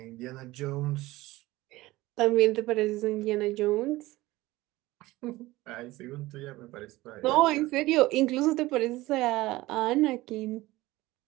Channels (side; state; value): left; quieter; 18.7 dB